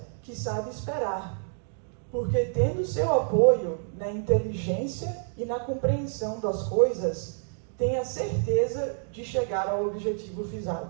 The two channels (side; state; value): left; silent; digital silence